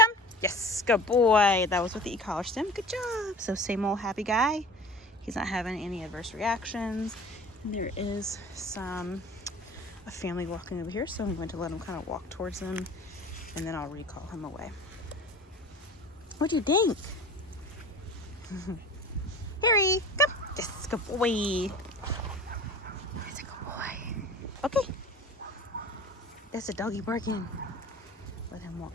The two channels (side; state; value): both; normal; correlation 0.39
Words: Yes, good boy. That was with the e-collar stem. Good job. So same old happy guy. He's not having any adverse reactions. And there is a family walking over here, so I'm going to let him kind of walk towards them, and then I'll recall him away. What do you think? Harry, come. Yes, good boy. He's a good boy. Okay. That's a doggy barking. Let him